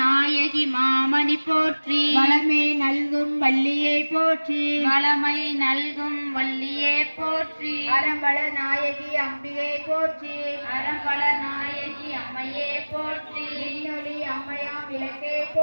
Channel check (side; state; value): both; inverted; correlation -1.00